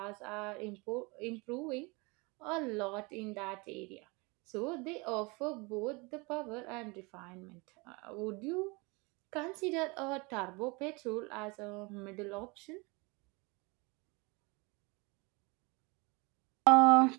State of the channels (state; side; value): quieter; left; 27.5 dB